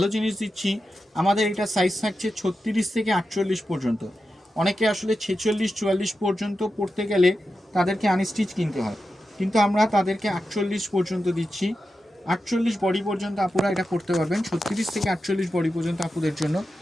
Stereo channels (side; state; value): both; normal; correlation 0.90